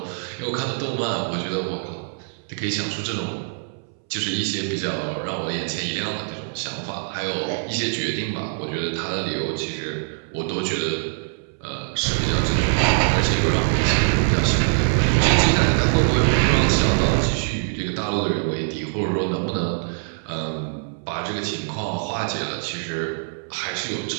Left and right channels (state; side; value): silent; left; 63 dB below the other